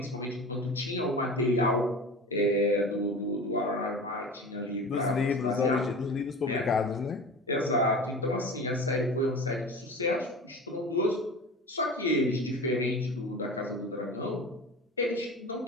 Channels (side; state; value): both; normal; correlation 0.34